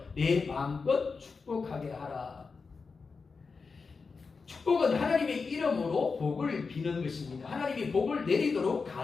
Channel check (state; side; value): quieter; right; 4.7 dB